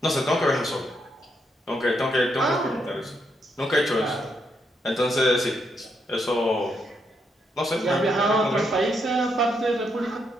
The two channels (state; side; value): normal; both; correlation 0.78